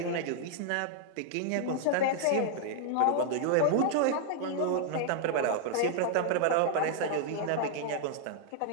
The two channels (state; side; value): different; both; correlation -0.01